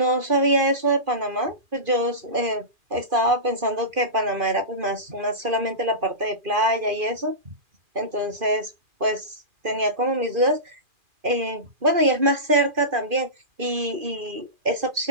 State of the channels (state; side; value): late; left; 2.5 ms